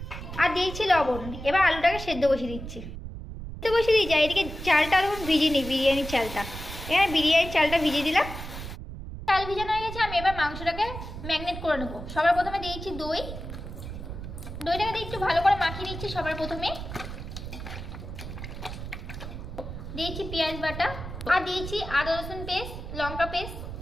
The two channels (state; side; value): noise; right; rumble, 9 dB below the sound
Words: আর দিয়েছি লবণ। এবার আলুটাকে সেদ্ধ বসিয়ে দিচ্ছি। সেদ্ধ বসিয়ে দিয়েছি। এদিকে চালটা তখন ভিজিয়ে নিই, বিরিয়ানির চালটা। এখানে বিরিয়ানির চালটা ভিজিয়ে দিলাম। চাল ভিজানো হয়ে গেছে। আমি এবার মাংসটাকে ম্যারিনেট করে নেবো। সবার প্রথমে দিয়েছি দই। দইটাকে দিয়ে একটু ভালো করে মাখিয়ে নিচ্ছি। সবার প্রথমে দিয়েছি পেঁয়াজ বাটা আর দিয়েছি আদা রসুন পেস্ট, লঙ্কা পেস্ট